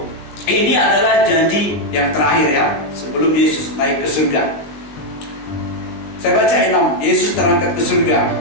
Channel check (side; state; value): right; late; 20 ms